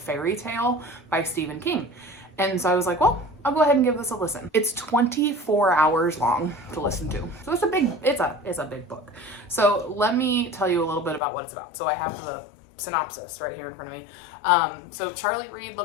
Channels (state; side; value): drops out; right; at 11.2 s